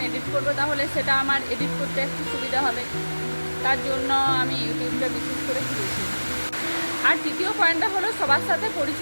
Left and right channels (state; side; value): inverted; both; correlation -1.00